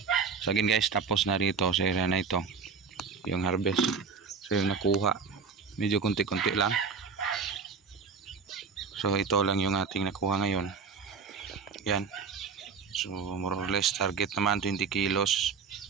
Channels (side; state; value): left; quieter; 5.6 dB